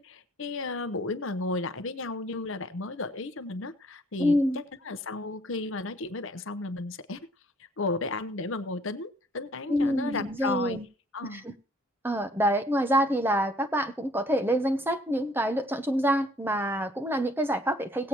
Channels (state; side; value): normal; both; correlation 0.59